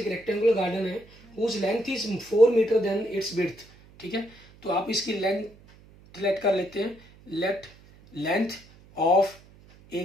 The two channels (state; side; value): noise; right; hum, 25 dB below the sound